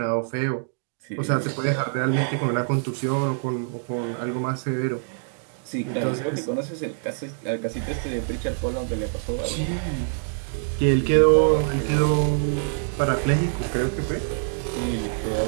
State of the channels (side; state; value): left; silent; digital silence